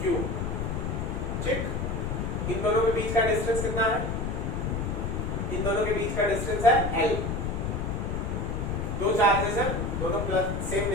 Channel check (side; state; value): left; noise; rumble, 2 dB below the sound